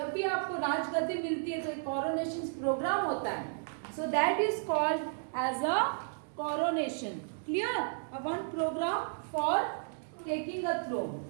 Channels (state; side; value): silent; left; digital silence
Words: भी आपको राजगद्दी मिलती है तो एक coronation प्रोग्राम होता है. So that is called as a coronation. Clear? A one program for taking a throne